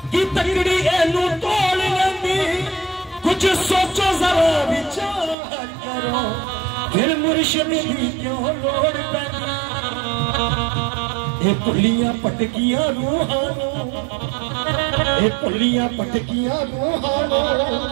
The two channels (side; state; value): left; drops out; at 5.4 s